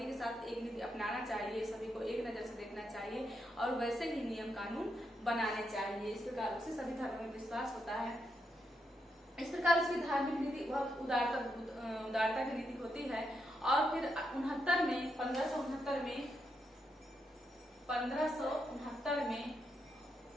के साथ एक नीति अपनाना चाहिए, सभी को एक नजर से देखना चाहिए और वैसे ही नियम कानून बनाने चाहिए। इस प्रकार से सभी धर्मों में विश्वास होता है। इस प्रकार उसकी धार्मिक नीति बहुत उदारता की नीति होती है। और फिर 1569 में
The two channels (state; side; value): normal; both; correlation 0.82